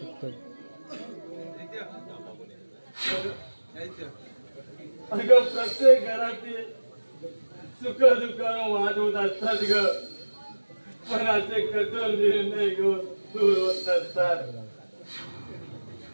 अगं प्रत्येक घरातील सुख दुःखानं वाद होत असतात ग. पण असे कठोर निर्णय घेऊन दूर होत नसतात.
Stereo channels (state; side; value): inverted; both; correlation -1.00